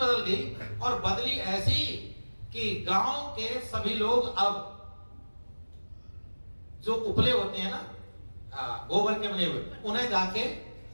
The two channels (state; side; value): inverted; both; correlation -1.00